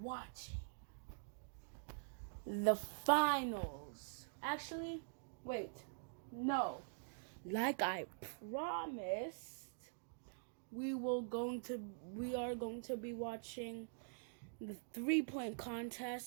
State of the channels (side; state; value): left; silent; digital silence